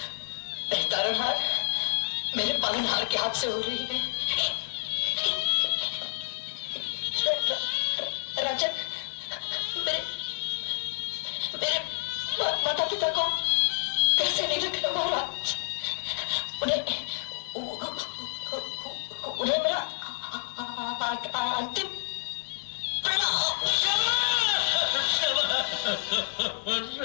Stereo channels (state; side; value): silent; right; digital silence